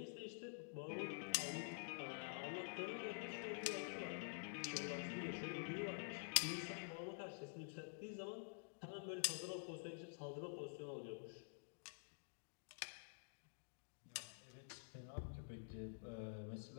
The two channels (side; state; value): right; silent; digital silence